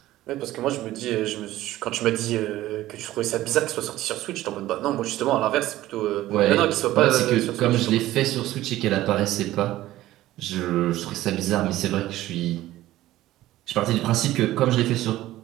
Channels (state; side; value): quieter; left; 15.4 dB